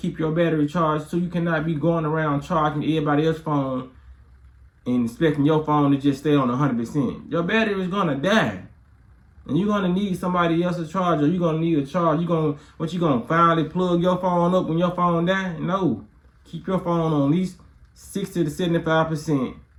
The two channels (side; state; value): both; identical; correlation 1.00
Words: your battery charged, so you cannot be going around charging everybody else's phone and expecting your phone to just stay on 100%. Your battery is gonna die, and you're gonna need somebody else's charger. You're gonna need a charge. You gonna finally plug your phone up when your phone die? No, keep your phone on at least 60 to 75%,